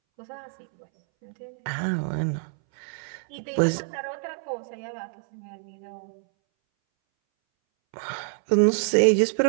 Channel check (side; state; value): left; silent; 60 dB below the other